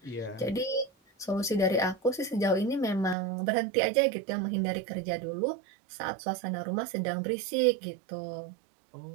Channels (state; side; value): drops out; left; at 3.2 s